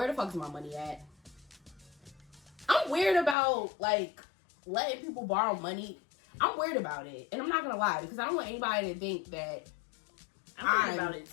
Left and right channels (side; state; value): right; drops out; at 3.4 s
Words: the fuck is my money at? I'm weird about, like, letting people borrow money. I'm weird about it. And I'm not going to lie, because I don't want anybody to think that I'm weird about it,